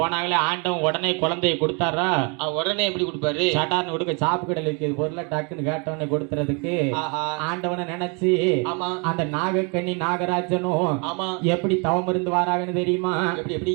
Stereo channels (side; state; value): left; quieter; 33.5 dB